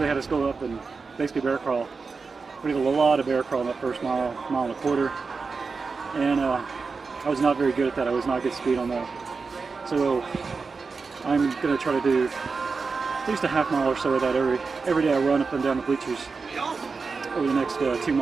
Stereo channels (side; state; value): left; quieter; 4.6 dB